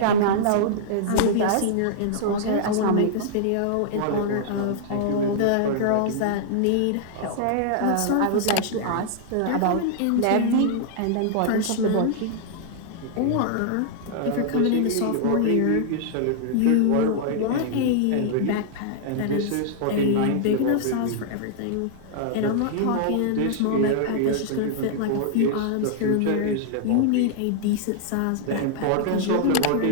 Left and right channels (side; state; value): both; different; correlation -0.01